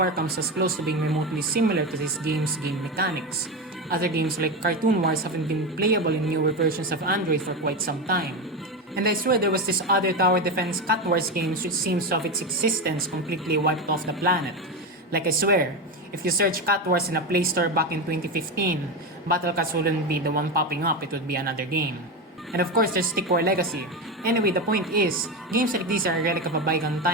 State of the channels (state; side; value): normal; both; correlation 0.17